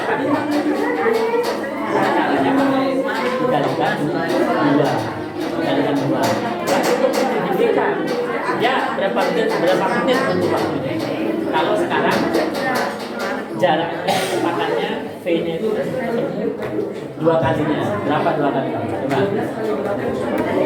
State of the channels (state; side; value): identical; both; correlation 1.00